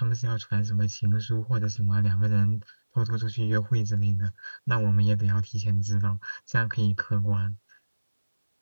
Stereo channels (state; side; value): inverted; both; correlation -1.00